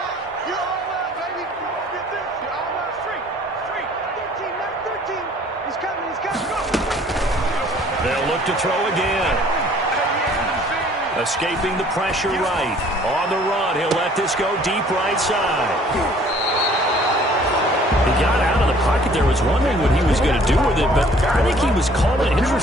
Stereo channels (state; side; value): normal; both; correlation 0.55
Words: You're all right, baby. Get this. You're all right. Street. Street. 13. Mike 13. He's coming. He's coming. Go. They'll look to throw again. Escaping the pressure right. On the run, he'll let this go deep right side. He got out of the pocket there, was wondering what he was going to do with it, but I think he was calling, his